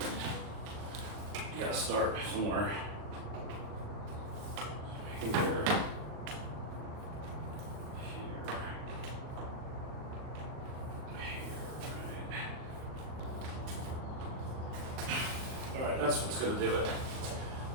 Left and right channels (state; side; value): late; left; 38 ms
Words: gotta start somewhere. here. Alright, that's what's gonna do it.